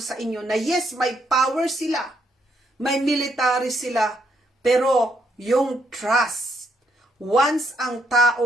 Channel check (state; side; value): normal; both; correlation 0.74